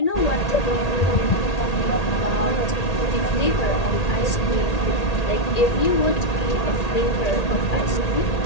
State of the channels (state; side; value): late; right; 1.8 ms